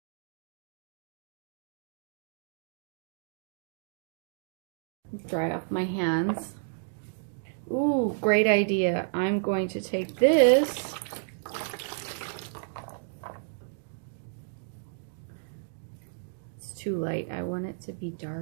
Dry off my hands. Ooh, great idea. I'm going to take this too light. I want it to be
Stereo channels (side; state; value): left; silent; digital silence